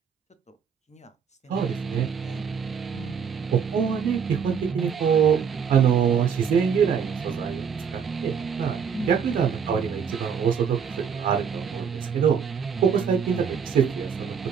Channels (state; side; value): quieter; left; 6.9 dB